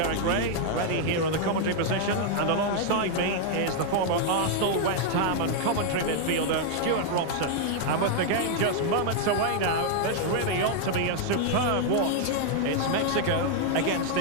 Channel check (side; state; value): both; different; correlation 0.00